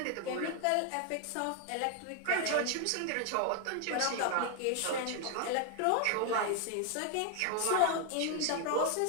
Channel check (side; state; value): both; different; correlation 0.00